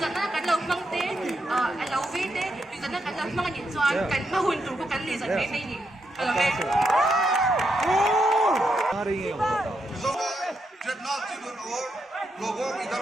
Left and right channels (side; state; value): both; normal; correlation 0.82